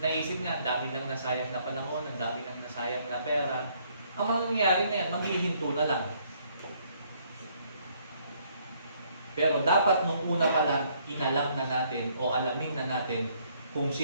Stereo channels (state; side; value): inverted; both; correlation -0.67